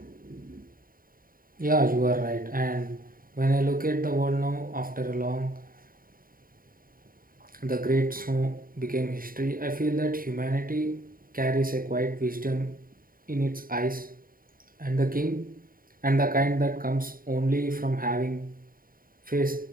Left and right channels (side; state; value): left; late; 0.41 ms